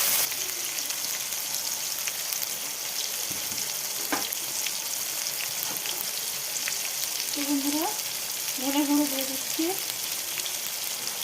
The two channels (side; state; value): both; identical; correlation 1.00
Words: বন্ধুরা ধনে গুঁড়ো দিয়ে দিচ্ছি,